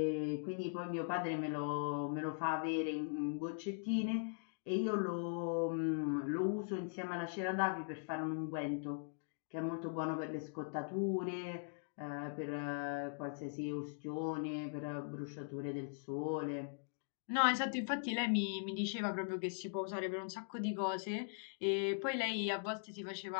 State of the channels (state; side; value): silent; right; digital silence